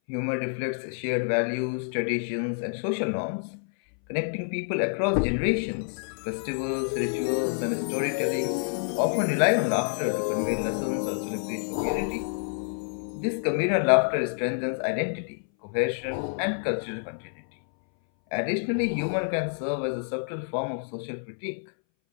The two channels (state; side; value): silent; right; 59 dB below the other